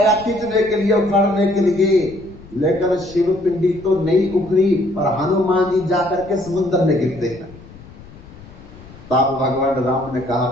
खींचने के लिए, उखाड़ने के लिए, लेकिन शिव पिंडी तो नहीं उखड़ी, पर हनुमान जी जाकर के समुद्र में गिरते हैं। तब भगवान राम ने कहा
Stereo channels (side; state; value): left; noise; rumble, 20 dB below the sound